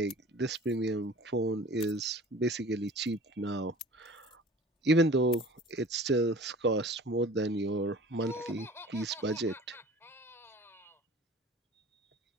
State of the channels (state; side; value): normal; both; correlation 0.43